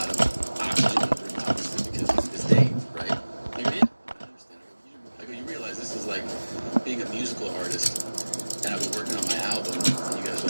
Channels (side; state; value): both; inverted; correlation -1.00